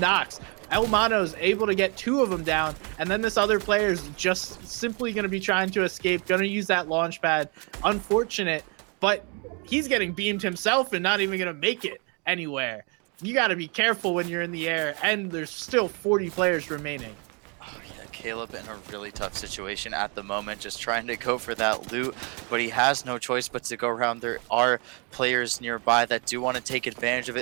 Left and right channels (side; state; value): left; quieter; 34.2 dB